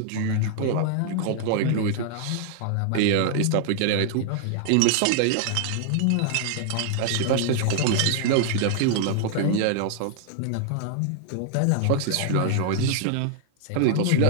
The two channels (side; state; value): both; different; correlation 0.00